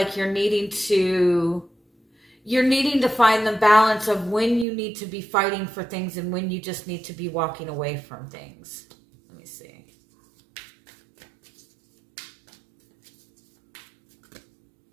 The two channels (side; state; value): left; drops out; at 4.7 s